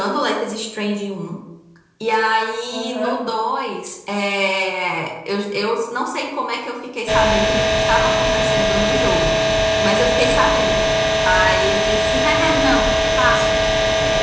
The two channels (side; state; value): both; identical; correlation 1.00